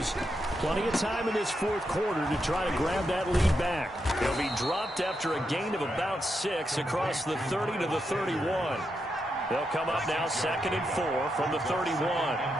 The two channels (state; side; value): normal; both; correlation 0.84